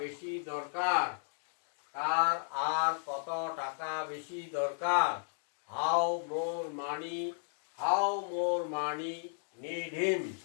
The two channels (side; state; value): right; silent; digital silence